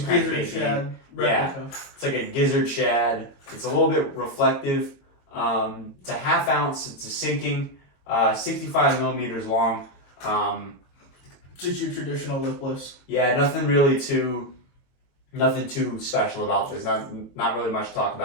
gizzard crankbait shad being. Yeah, replica. it's like a gizzard shad. It's a little bit reflective. It's a 1/2 ounce. It's a sinking, 65 millimeters long. Just your traditional lipless. Yeah, nothing too special about this. Not really much to talk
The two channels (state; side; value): late; right; 22 ms